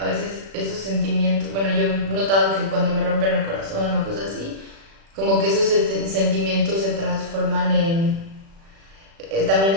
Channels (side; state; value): left; late; 36 ms